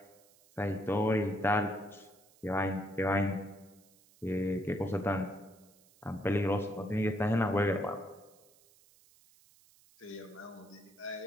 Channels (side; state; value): right; noise; hiss, 28 dB below the sound